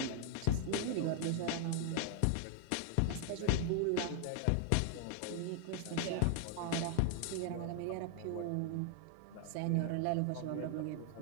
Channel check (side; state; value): both; different; correlation 0.00